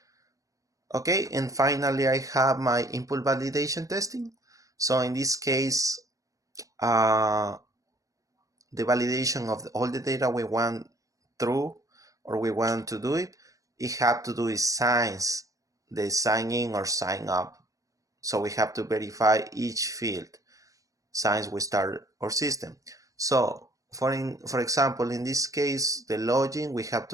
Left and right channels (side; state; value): left; late; 0.16 ms